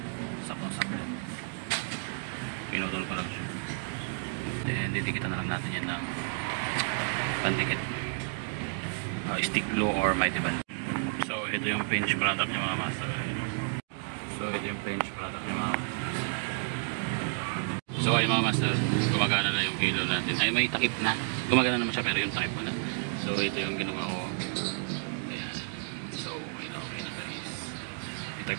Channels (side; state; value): left; silent; digital silence